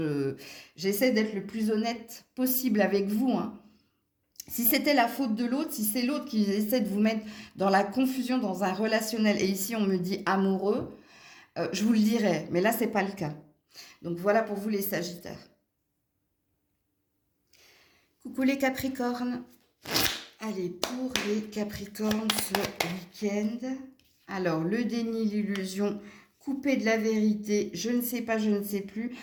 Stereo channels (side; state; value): both; identical; correlation 1.00